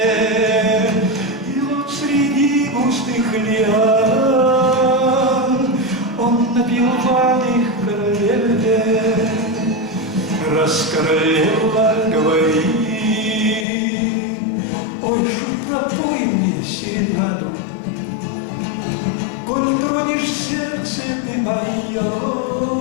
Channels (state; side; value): drops out; right; at 13.7 s